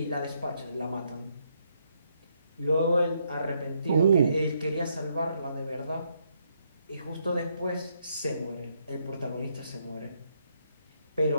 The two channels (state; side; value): inverted; both; correlation -0.75